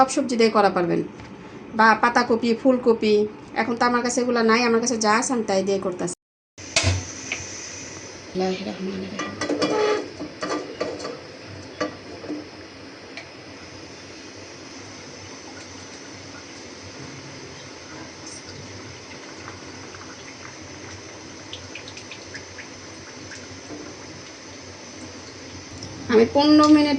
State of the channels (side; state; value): both; identical; correlation 1.00